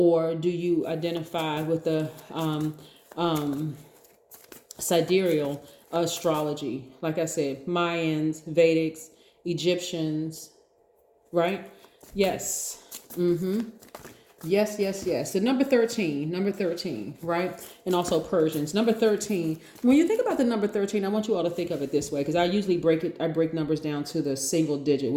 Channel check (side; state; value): both; identical; correlation 1.00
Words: do you identify with the sidereal astrology? Like I said, Mayans, Vedics, Egyptians, right? Yes. Yes, yes, yes. So number 13, right? And also Persians. Number 13. When you think about the number 13, I want you all to think of it this way, because I usually break numbers down to the single digit,